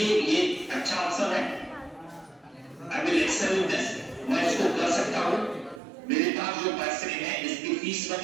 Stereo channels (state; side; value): drops out; left; at 5.8 s